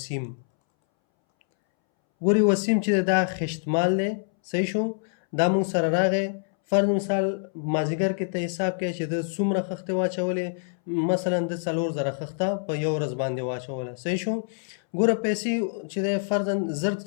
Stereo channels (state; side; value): silent; right; 61 dB below the other